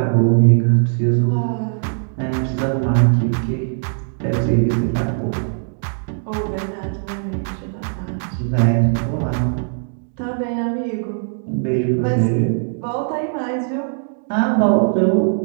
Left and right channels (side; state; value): left; silent; digital silence